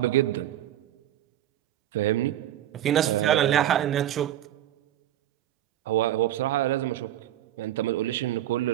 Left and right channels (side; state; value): left; quieter; 12.5 dB